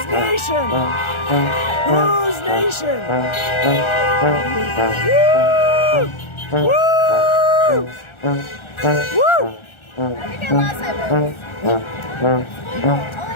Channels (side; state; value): right; late; 1.4 ms